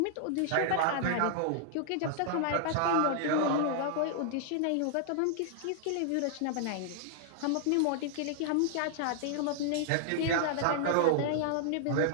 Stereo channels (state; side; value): different; both; correlation -0.01